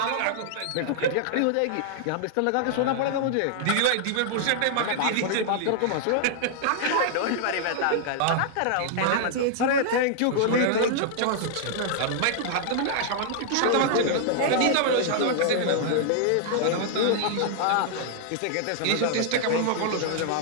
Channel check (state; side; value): different; both; correlation -0.01